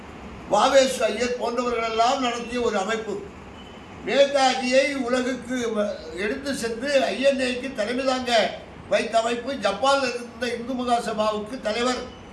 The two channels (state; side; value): identical; both; correlation 1.00